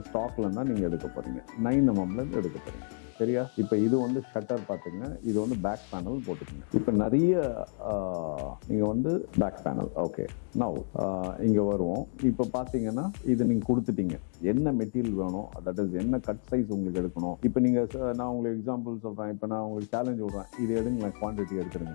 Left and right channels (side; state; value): right; silent; 58 dB below the other